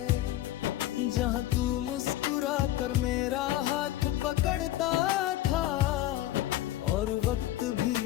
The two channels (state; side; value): quieter; right; 14.3 dB